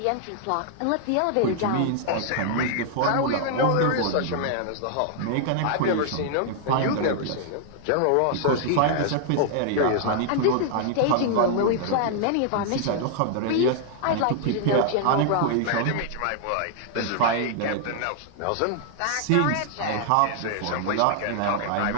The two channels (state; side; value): different; both; correlation -0.01